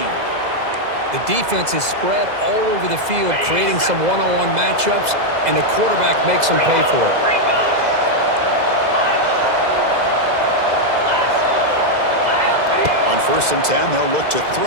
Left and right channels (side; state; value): left; late; 2.0 ms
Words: The defense is spread all over the field, creating some one-on-one matchups, and the quarterback makes them pay for it. On 1st and 10, they'll look to throw